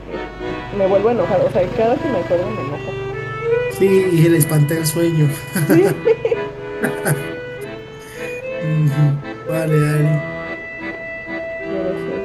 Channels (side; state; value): both; identical; correlation 1.00